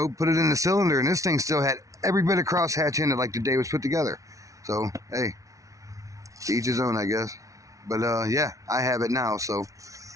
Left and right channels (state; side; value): late; left; 0.16 ms